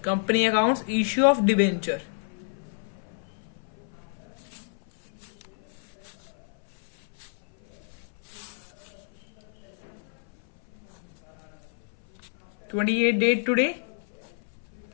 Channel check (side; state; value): right; silent; 57 dB below the other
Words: Company Accounts, Issue of Debenture. (28th date today?